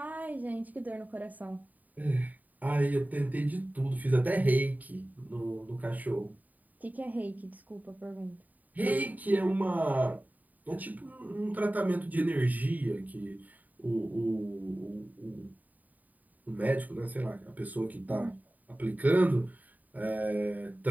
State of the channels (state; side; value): late; left; 0.079 ms